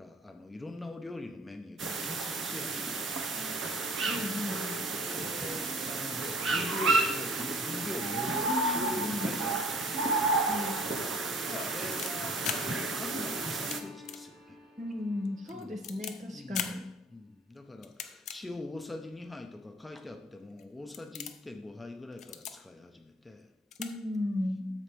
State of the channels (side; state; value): both; normal; correlation 0.50